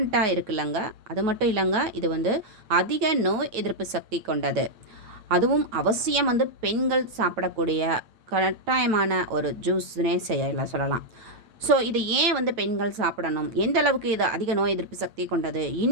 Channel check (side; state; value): left; late; 8.7 ms